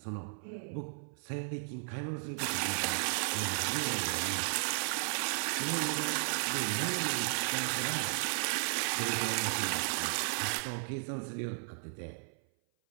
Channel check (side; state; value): left; silent; 55 dB below the other